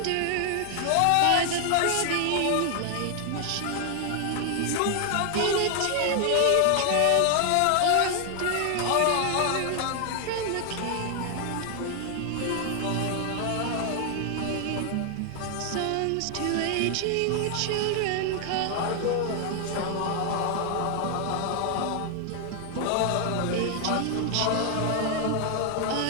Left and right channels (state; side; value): different; both; correlation 0.00